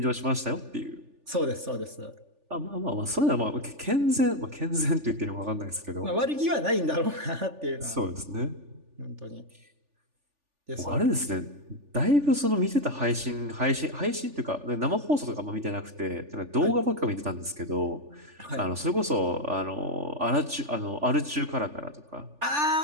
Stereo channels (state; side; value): late; left; 3.4 ms